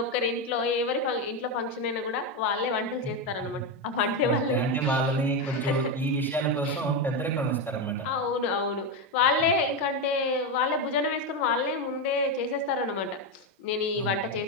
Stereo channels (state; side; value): normal; both; correlation 0.10